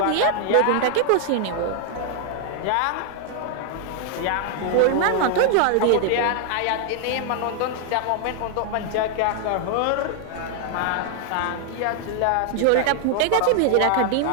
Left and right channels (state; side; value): different; both; correlation 0.00